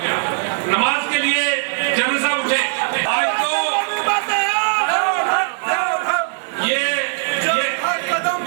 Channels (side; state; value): left; silent; digital silence